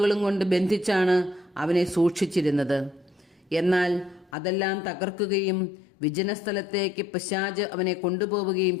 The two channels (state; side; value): drops out; right; at 4.3 s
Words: കൊണ്ട് ബന്ധിച്ചാണ് അവനെ സൂക്ഷിച്ചിരുന്നത്. എന്നാൽ അതെല്ലാം തകർക്കുകയും വിജനസ്ഥലത്തേക്ക് പിശാച് അവനെ കൊണ്ടുപോവുകയും